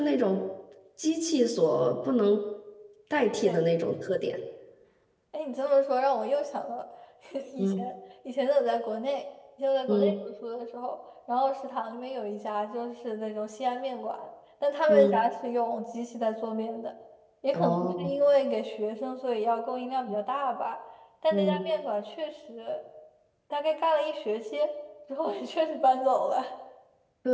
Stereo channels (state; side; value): identical; both; correlation 1.00